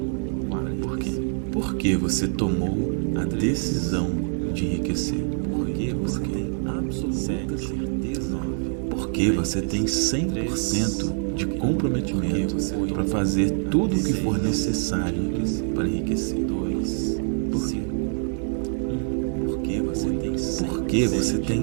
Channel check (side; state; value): left; silent; 56 dB below the other